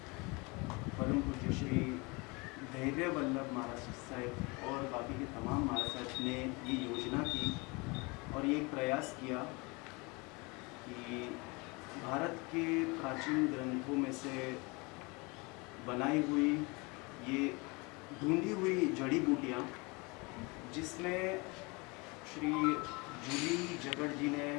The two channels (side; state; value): right; quieter; 27.5 dB